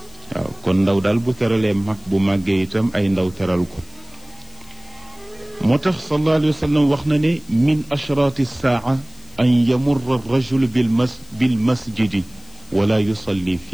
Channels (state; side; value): noise; left; hiss, 25 dB below the sound